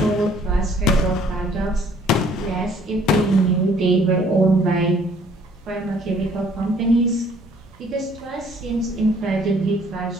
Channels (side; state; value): both; normal; correlation 0.59